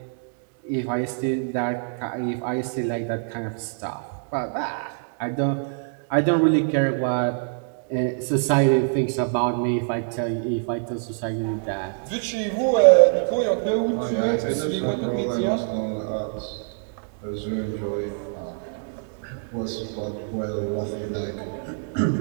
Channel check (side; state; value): left; silent; digital silence